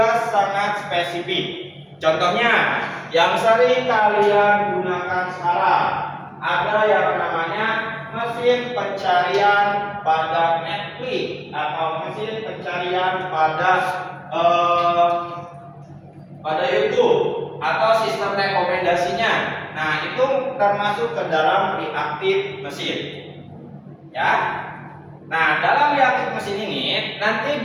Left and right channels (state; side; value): identical; both; correlation 1.00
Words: sangat spesifik. Contohnya yang sering kalian gunakan sekarang ada yang namanya mesin pencarian pada Netflix atau mesin pencarian pada YouTube atau sistem rekomendasinya. Nah, itu termasuk ke dalam reaktif mesin, ya. Nah, dalam reaktif mesin ini nanti